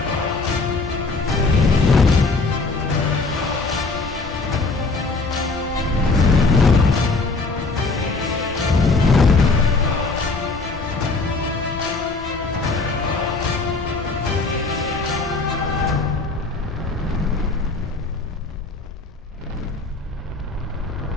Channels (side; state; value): right; quieter; 3.7 dB